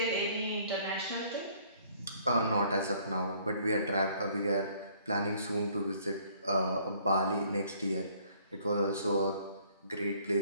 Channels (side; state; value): both; inverted; correlation -0.60